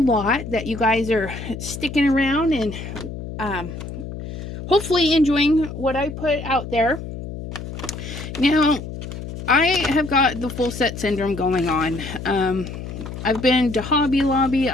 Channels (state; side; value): noise; left; hum, 9 dB below the sound